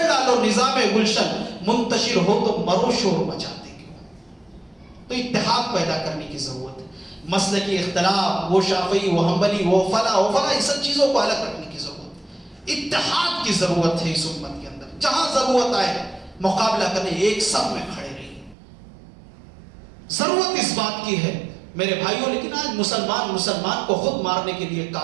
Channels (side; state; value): left; drops out; at 18.6 s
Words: ڈالو نظام گلشن, منتشر ہو تو مرو شور مچاتے کیوں. تو اتحاد پیدا کرنے کی ضرورت ہے. مسلکی اختلاف, وہ شافعی, وہ حنبلی, وہ فلاں ان سب چیزوں کو الگ رکھنے کی ضرورت ہے. اتحاد کی ضرورت ہے اس امت کے اندر. جہاں ضرورت آئے مقابلہ کرنے, ایک سب میں کھڑے رہیے. ضرورت اس بات کی ہے میرے بھائیوں, لیکن آج مسلمان کو خود مارنے کے لیے